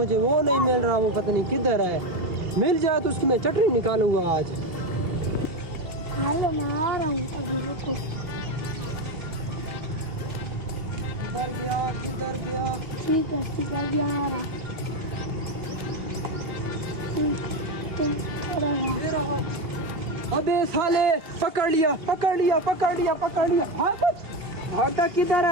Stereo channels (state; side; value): late; left; 2.7 ms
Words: वो नहीं मिल रहा, वो पता नहीं किधर है। मिल जाए तो उसकी मैं चटनी निकालूंगा आज। हेलो, मैं आ रहा हूँ, अभी रुको। किधर गया? ठीक है, अभी आ रहा। तुम थोड़ा रहो। अबे साले, पकड़ लिया। भागता किधर